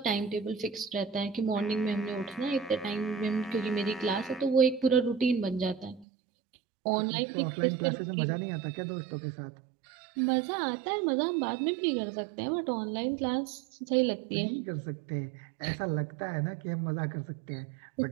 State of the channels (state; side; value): drops out; left; at 6.1 s